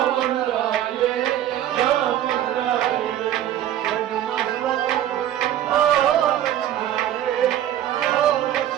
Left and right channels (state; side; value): quieter; left; 11.8 dB